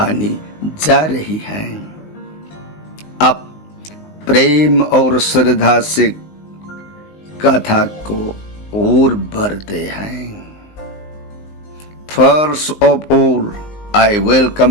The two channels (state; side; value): late; right; 19 ms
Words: जा रही है। अब प्रेम और श्रद्धा से कथा को और बढ़ते हैं। First of all, I